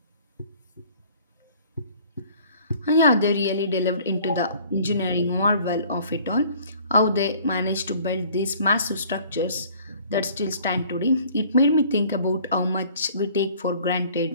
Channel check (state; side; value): inverted; both; correlation -0.53